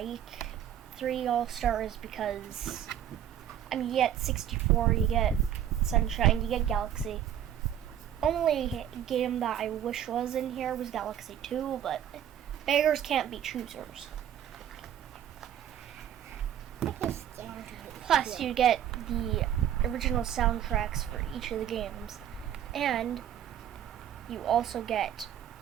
3D All-Stars because you get 64, you get Sunshine, you get Galaxy. Only game that I wish was in here was Galaxy 2, but beggars can't be choosers. Plus, you get the original soundtracks for each of the games, and you also get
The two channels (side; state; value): left; quieter; 10.4 dB